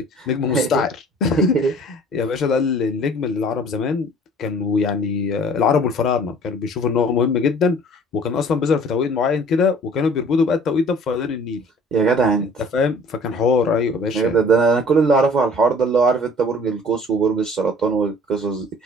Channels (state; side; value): normal; both; correlation 0.50